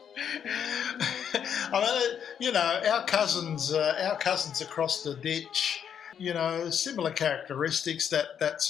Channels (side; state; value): right; quieter; 8.3 dB